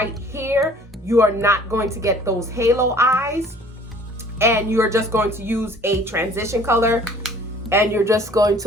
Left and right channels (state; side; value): normal; both; correlation 0.52